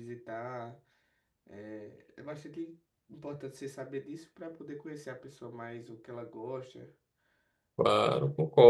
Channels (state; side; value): identical; both; correlation 1.00